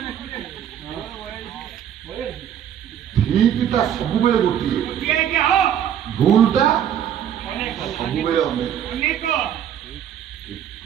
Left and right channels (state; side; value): quieter; left; 9.7 dB